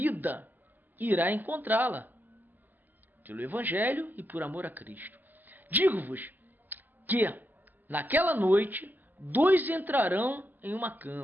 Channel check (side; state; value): left; late; 0.085 ms